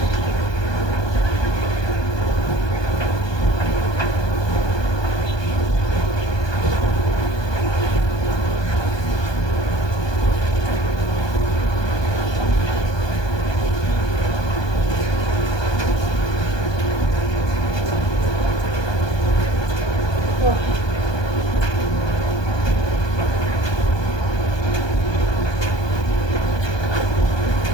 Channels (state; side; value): late; right; 1.2 ms